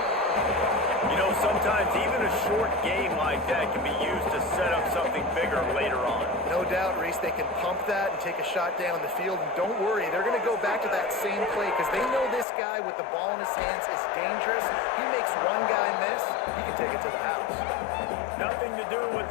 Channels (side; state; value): right; drops out; at 12.5 s